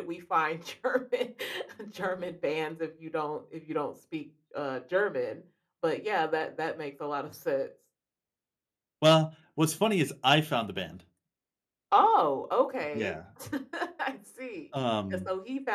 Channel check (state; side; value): identical; both; correlation 1.00